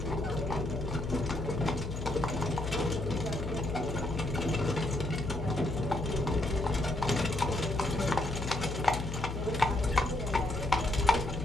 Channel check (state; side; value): noise; left; hum, 5 dB below the sound